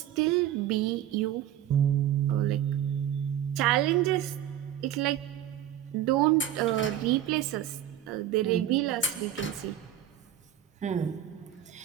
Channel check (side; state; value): left; quieter; 11.4 dB